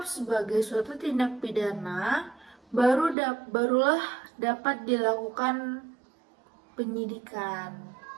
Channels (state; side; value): drops out; left; at 3.2 s